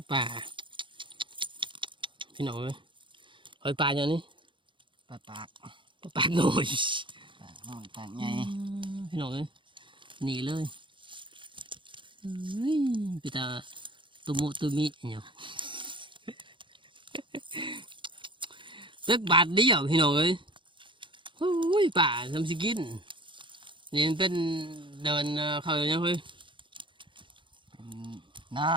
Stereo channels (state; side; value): late; left; 0.24 ms